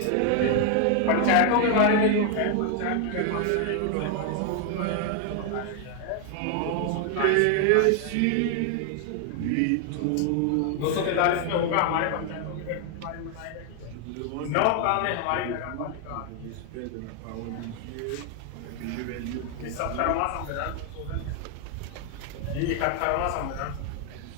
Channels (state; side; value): different; both; correlation 0.00